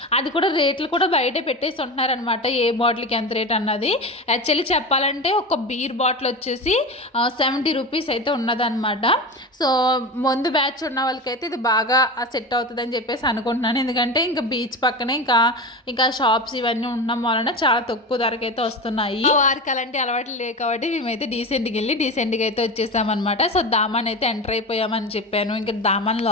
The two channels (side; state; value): both; normal; correlation 0.25